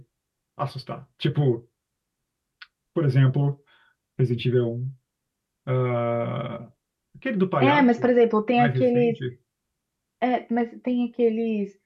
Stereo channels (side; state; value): both; identical; correlation 1.00